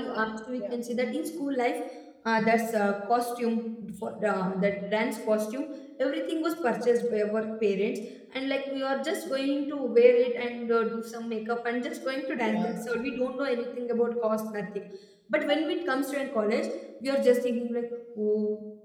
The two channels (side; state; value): both; identical; correlation 1.00